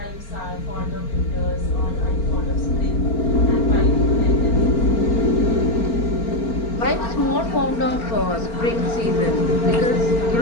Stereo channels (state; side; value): late; right; 4.4 ms